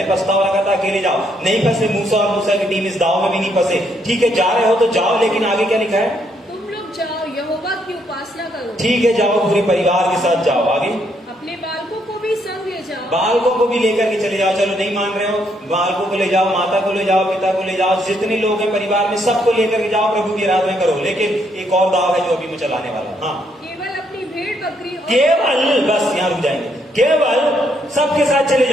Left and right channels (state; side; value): normal; both; correlation 0.73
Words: पछतावा लगा था, अकेले जाओ, नहीं फंसे मूसा और मूसा की टीम इस दाव में भी नहीं फंसे। ठीक है, जा रहे हो तो जाओ, लेकिन आगे क्या लिखा है? तुम लोग जाओ, यहोवा की उपासना करो। ठीक है, जाओ, पूरे परिवार के साथ जाओ। आगे? अपने बालकों को भी संग ले जाओ। बालकों को भी लेकर के चले जाओ। चलो नहीं मान रहे हो, बालकों को ले जाओ, माता को ले जाओ, पिता को ले जाओ, जितने लोग हैं परिवार में सबको लेकर के जाओ, प्रभु की आराधना करो। लेकिन एक और दाव है जो अभी मैं चलाने वाला हूं। हाँ, केवल अपनी भेड़ बकरी और केवल, बस यहाँ रुक जाएंगे, केवल सबके साथ चले